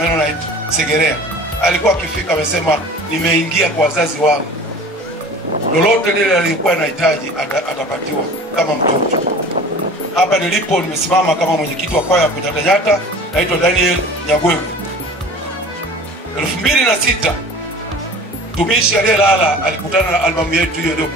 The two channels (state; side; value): normal; both; correlation 0.42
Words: Segerea. Alikuwa akifika amesema nimeingia kwa wazazi wangu, lolote lile alikuwa anahitaji atapatiwa kama mtoto. Hapa nilipo nimesimama kama mwenyekiti wa kwaya ya kunyatanyata, naitwa Daniel Nyagwewe. 2006 tumishi aliyelala alikutana na albamu yetu hiyo